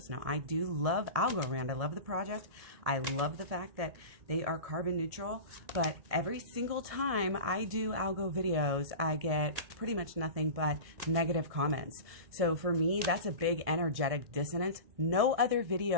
Now, I do love Algorand. I love the project. I love the fact that they are carbon neutral, but every single time I do algo videos, I get pretty much nothing but negative comments. So for me, that's a big energetic dissonance. No other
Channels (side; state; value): left; late; 1.7 ms